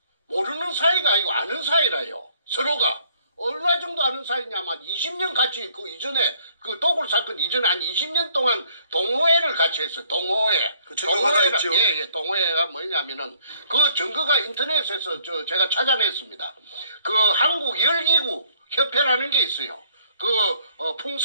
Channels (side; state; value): both; inverted; correlation -0.62